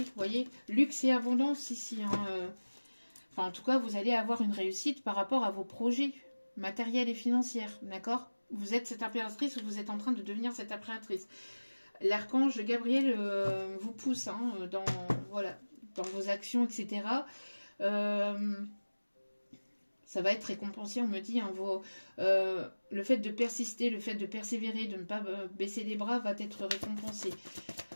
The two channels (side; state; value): both; inverted; correlation -1.00